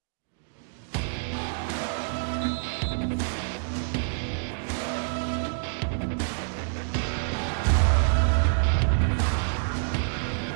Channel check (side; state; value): left; silent; digital silence